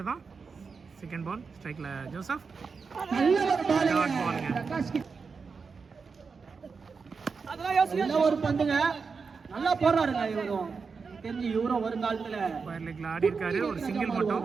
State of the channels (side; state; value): left; quieter; 5.1 dB